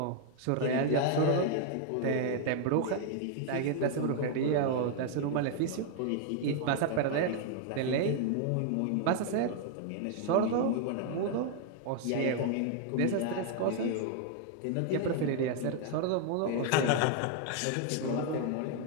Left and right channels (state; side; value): different; both; correlation 0.00